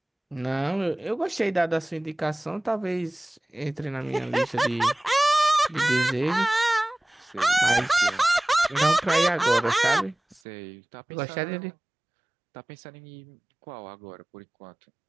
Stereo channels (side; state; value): left; drops out; at 10.4 s